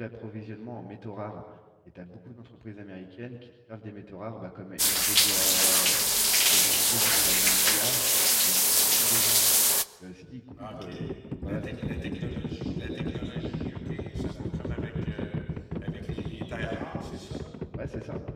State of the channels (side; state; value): both; identical; correlation 1.00